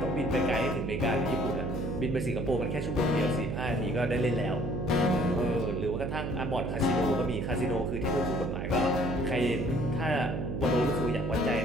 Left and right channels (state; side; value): noise; right; hum, 2 dB below the sound